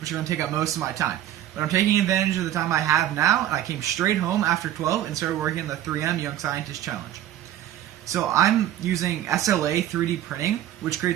are going to take up most of my time. But I'm taking advantage of the time I have now, and I came straight home after 12 and started working on the 3M Young Scientist Challenge. So I'm using SLA 3D printing, which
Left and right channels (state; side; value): quieter; left; 12.3 dB